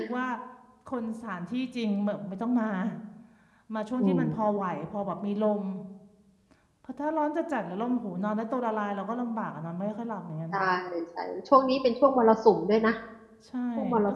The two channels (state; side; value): identical; both; correlation 1.00